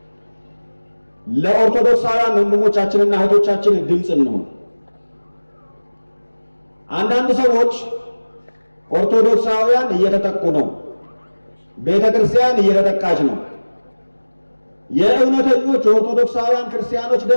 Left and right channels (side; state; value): both; inverted; correlation -1.00